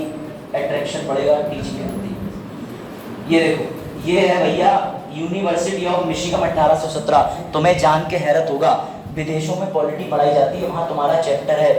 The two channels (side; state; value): both; identical; correlation 1.00